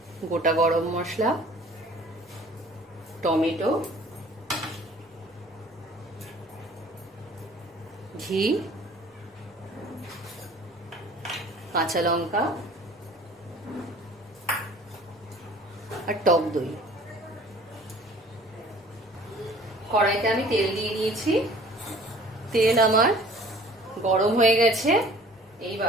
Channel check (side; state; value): both; normal; correlation 0.50